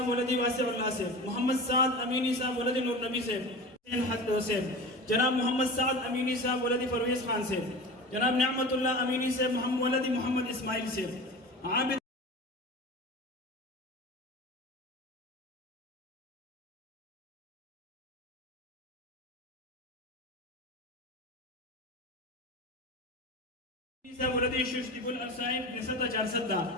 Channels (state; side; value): normal; both; correlation 0.32